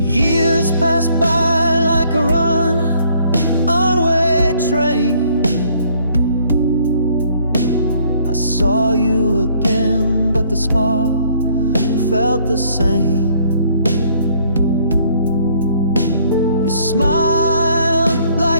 Years pass by like a runaway train. I saw you again, but the spark felt the same. You smiled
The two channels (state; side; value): inverted; both; correlation -0.63